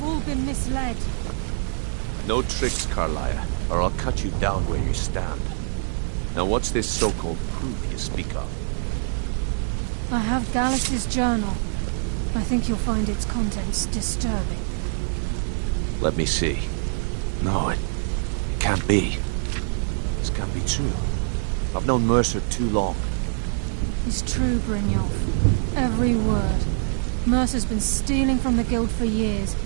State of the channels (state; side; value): silent; left; digital silence